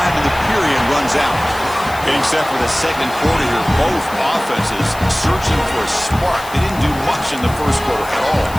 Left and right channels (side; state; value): left; noise; hiss, 17 dB below the sound